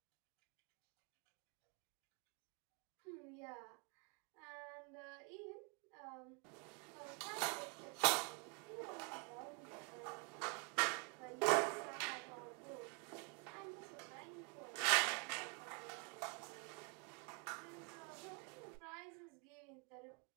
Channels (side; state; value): left; quieter; 34.4 dB